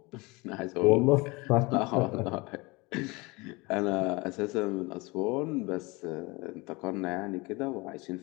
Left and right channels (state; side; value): quieter; right; 25.0 dB